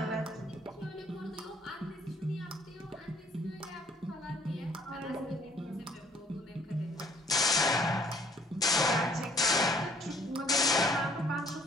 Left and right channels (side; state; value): both; normal; correlation 0.59